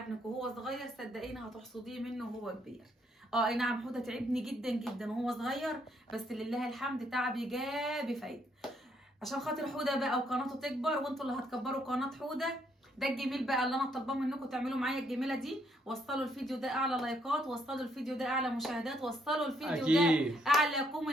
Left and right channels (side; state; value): both; normal; correlation 0.71